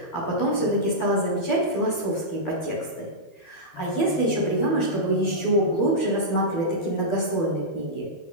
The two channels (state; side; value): late; right; 12 ms